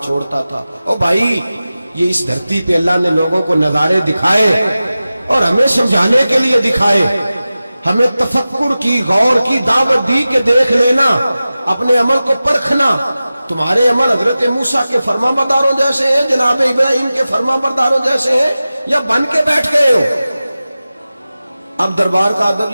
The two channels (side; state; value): both; inverted; correlation -0.95